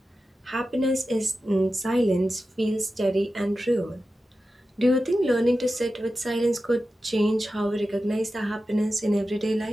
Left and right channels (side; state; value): both; normal; correlation 0.93